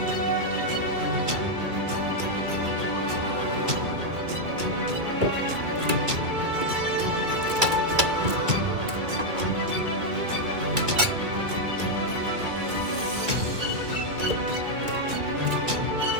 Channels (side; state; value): left; late; 2.3 ms